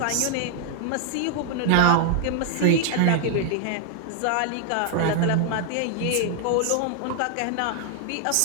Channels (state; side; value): different; both; correlation 0.00